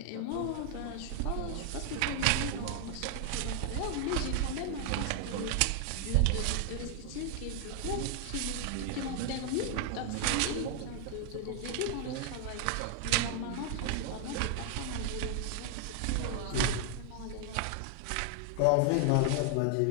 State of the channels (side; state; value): both; different; correlation 0.00